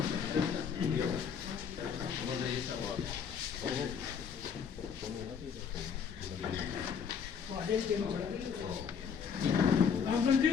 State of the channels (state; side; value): quieter; right; 6.9 dB